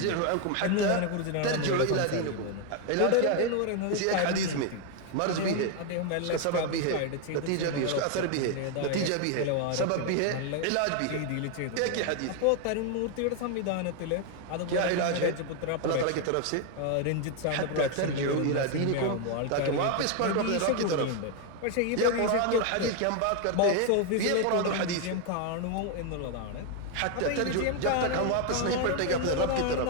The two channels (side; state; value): both; different; correlation 0.01